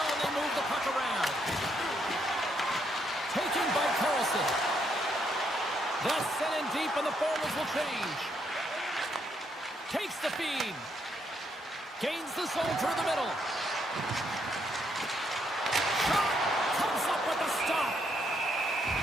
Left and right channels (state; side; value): normal; both; correlation 0.75